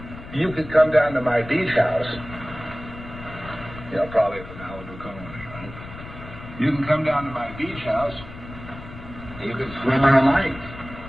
You could come down to my beach house. Probably at the Malibu Colony, right? You can come down to my beach house. And you can swim all night,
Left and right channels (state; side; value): noise; left; rumble, 14 dB below the sound